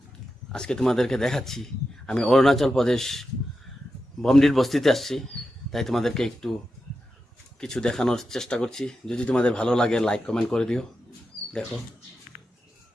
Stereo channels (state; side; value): normal; both; correlation 0.89